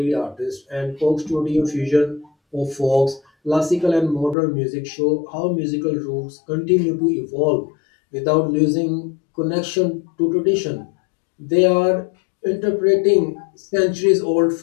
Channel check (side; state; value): right; drops out; at 4.4 s